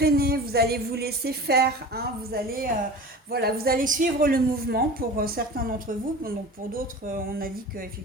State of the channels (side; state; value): both; normal; correlation 0.36